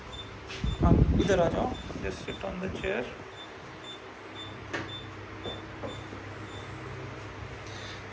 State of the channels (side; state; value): both; identical; correlation 1.00